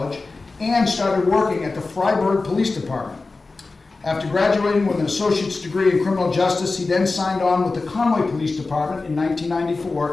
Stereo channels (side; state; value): right; quieter; 3.7 dB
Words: and started working at the Freiburg Police Department. After graduating with an associate's degree in criminal justice, he then signed on with the Conway Police Department in